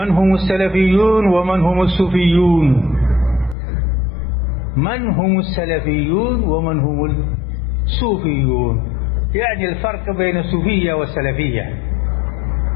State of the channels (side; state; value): right; drops out; at 3.6 s